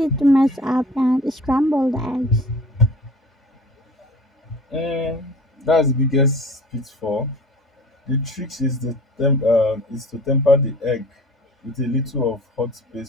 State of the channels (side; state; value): both; normal; correlation 0.43